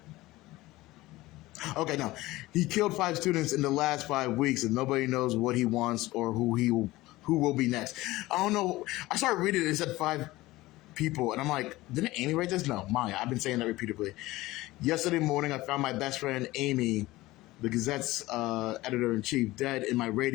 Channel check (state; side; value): quieter; right; 18.6 dB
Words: Okay, no. He killed 5 students in the last 5 weeks, and nobody knows what he wants or who will be next. I don't know. I started reading it. It said 5 people, and I'm like, didn't Amy write this? No, Maya. I've been saying that repeatedly. Yesterday morning, I found my best friend Amy, the Gazette's editor in chief, dead in my